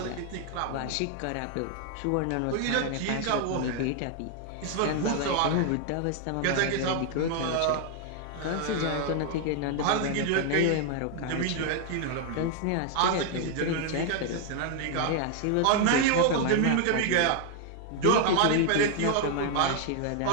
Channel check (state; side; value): different; both; correlation 0.00